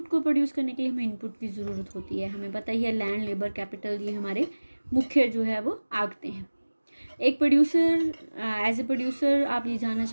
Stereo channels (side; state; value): both; inverted; correlation -1.00